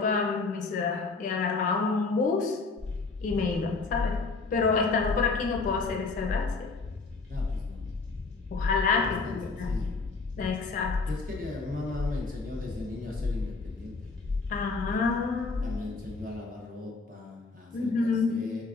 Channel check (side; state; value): right; quieter; 4.0 dB